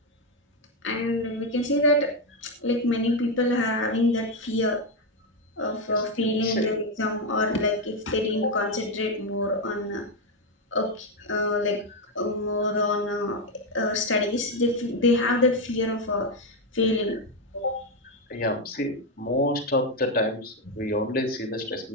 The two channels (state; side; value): normal; both; correlation 0.06